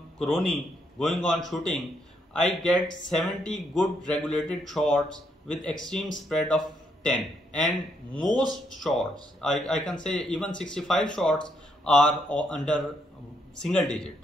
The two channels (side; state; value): both; normal; correlation 0.75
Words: Crony going on shooting, I get 70 good regulated shots with extreme spread of 10, and most shots, I can say even 65 shots are under single digit.